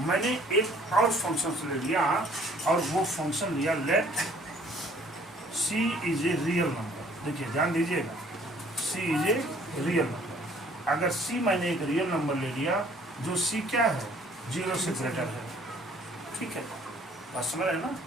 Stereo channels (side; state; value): both; normal; correlation 0.58